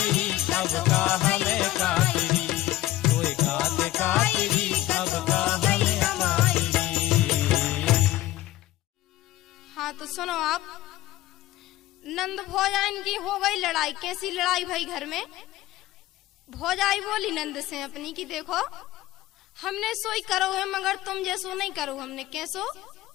अब का हमें खातिरी, कोई का खातिरी अब का हमें खातिरी। हाँ तो सुनो आप, नंद भौजाइन की हो गई लड़ाई। कैसी लड़ाई भाई घर में? भौजाई बोली नंद से अपनी की देखो हमने सोई करो है मगर तुम जैसो नहीं करो हमने कैसो।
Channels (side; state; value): right; quieter; 15.9 dB